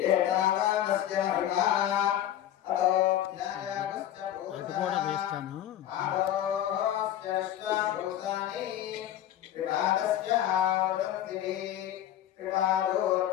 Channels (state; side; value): quieter; right; 11.7 dB